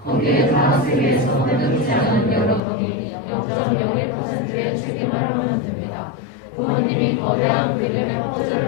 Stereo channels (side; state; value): right; drops out; at 2.6 s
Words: 거기에 타락세계에서 때묻지 않은 여러분이 0.01%의 책임을 하면 됩니다. 부모님이 거대한 그림의 퍼즐을